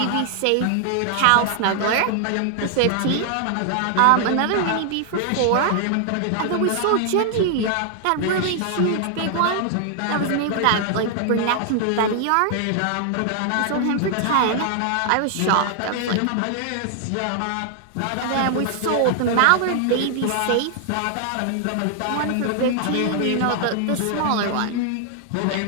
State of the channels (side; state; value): both; different; correlation 0.00